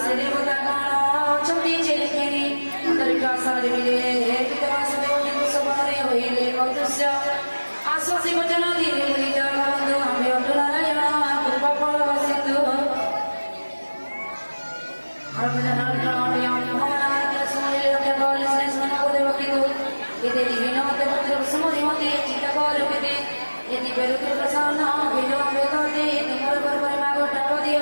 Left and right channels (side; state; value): both; inverted; correlation -1.00